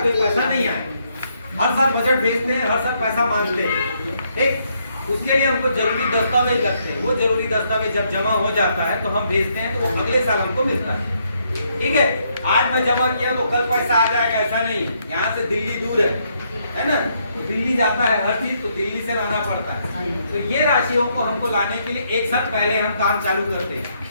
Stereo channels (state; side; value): inverted; both; correlation -0.74